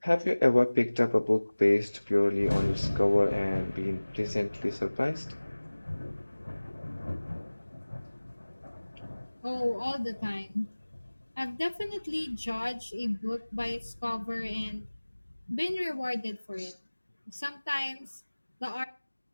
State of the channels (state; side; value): inverted; both; correlation -1.00